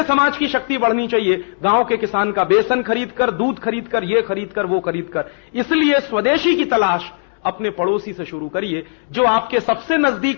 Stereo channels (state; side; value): silent; right; digital silence